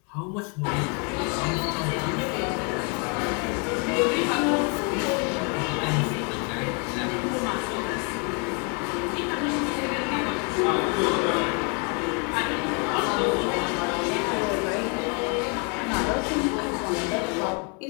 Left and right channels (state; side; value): quieter; right; 35.7 dB